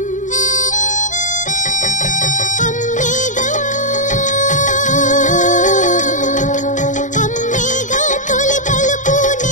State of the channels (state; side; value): late; right; 0.36 ms